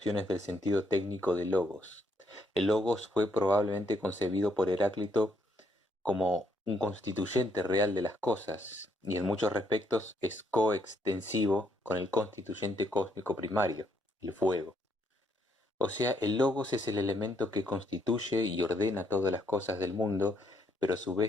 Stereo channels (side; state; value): both; normal; correlation 0.73